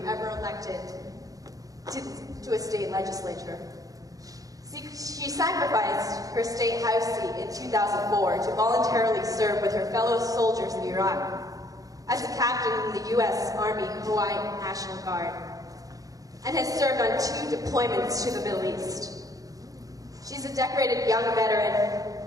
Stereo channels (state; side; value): late; left; 0.17 ms